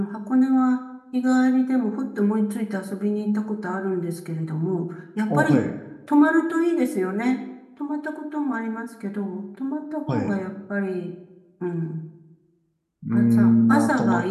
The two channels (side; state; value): both; identical; correlation 1.00